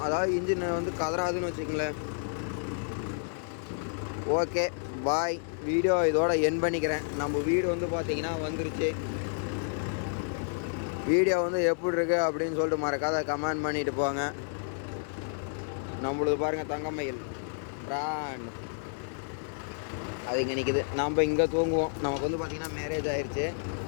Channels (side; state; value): right; silent; digital silence